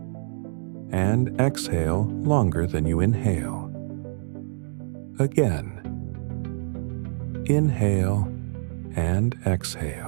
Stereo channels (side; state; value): left; silent; digital silence